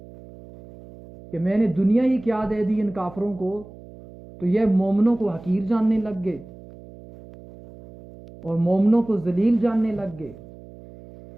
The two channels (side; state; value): right; noise; hum, 19 dB below the sound